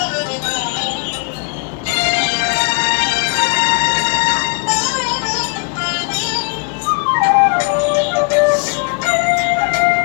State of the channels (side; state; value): right; quieter; 32.9 dB